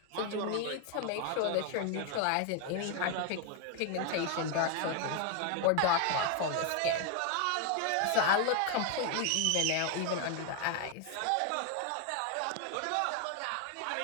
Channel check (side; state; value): both; different; correlation 0.00